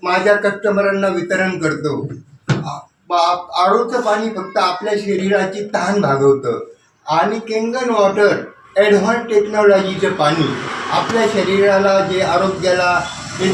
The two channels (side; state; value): both; identical; correlation 1.00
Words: माझ्या कस्टमरांना वितरण करतो. आरोचं पाणी फक्त आपल्या शरीराची तहान भागवतं आणि केंगन वॉटर ॲडव्हान्स टेक्नॉलॉजीचं पाणी आपल्या शरीराला जे आरोग्याला